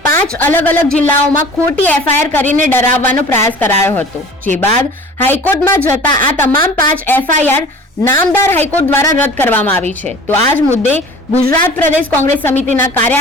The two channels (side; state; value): both; normal; correlation 0.43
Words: 5 અલગ અલગ જિલ્લાઓમાં ખોટી એફઆઈઆર કરીને ડરાવવાનો પ્રયાસ કરાયો હતો. જે બાદ હાઈકોર્ટમાં જતા આ તમામ 5 એફઆઈઆર નામદાર હાઈકોર્ટ દ્વારા રદ કરવામાં આવી છે. તો આ જ મુદ્દે ગુજરાત પ્રદેશ કોંગ્રેસ સમિતિના